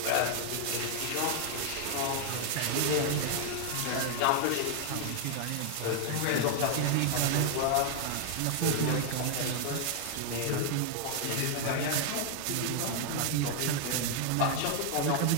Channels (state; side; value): different; both; correlation 0.00